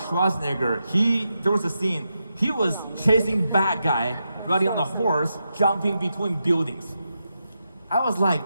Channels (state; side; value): inverted; both; correlation -0.86